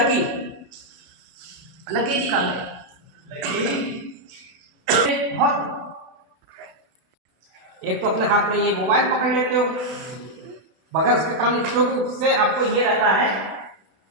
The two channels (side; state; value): left; late; 32 ms